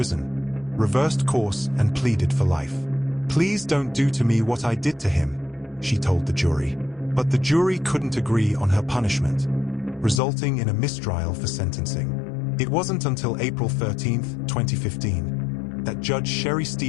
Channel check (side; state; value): right; drops out; at 10.2 s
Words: reversed course and pleaded for life. "Please don't do to me what I did to him," she told the jury. But the jury couldn't agree on her punishment, resulting in a mistrial for sentencing. It wasn't until April 13, 2015, that Judge Sherry